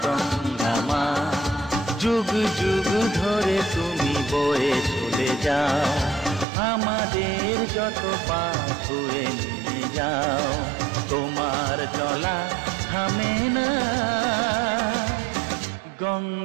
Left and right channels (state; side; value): drops out; left; at 6.5 s